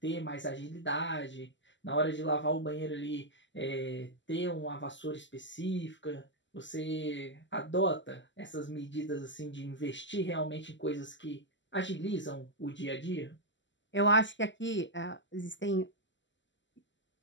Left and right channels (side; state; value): right; late; 0.54 ms